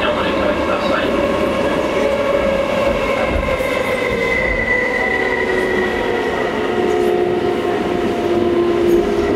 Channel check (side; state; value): both; identical; correlation 1.00